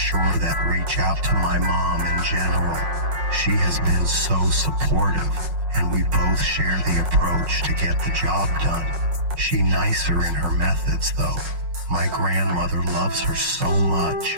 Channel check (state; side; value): late; left; 5.5 ms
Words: that reach out to my mom in general. She has been so supportive, and we both share the approach to get the job done. She nicer in her methods, though. My grandmother loves her so much.